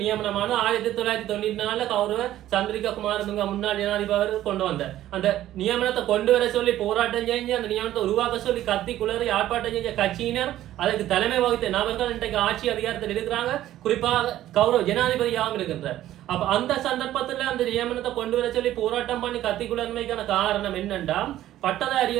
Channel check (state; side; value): quieter; left; 13.4 dB